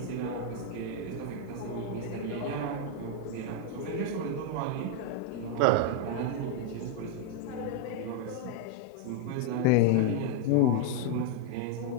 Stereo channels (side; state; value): both; different; correlation 0.00